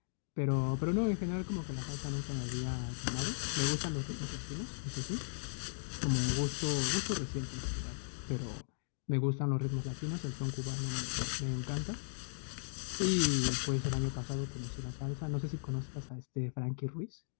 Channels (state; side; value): silent; right; digital silence